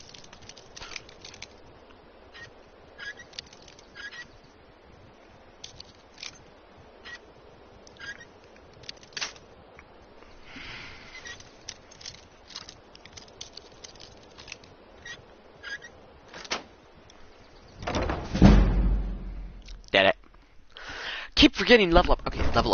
Did it. Keep forgetting level up. Okay, level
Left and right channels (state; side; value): identical; both; correlation 1.00